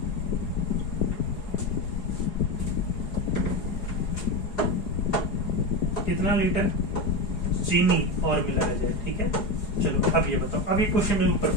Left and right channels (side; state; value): right; late; 4.8 ms